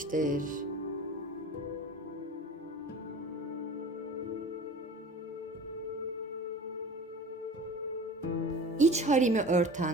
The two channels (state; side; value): normal; both; correlation 0.39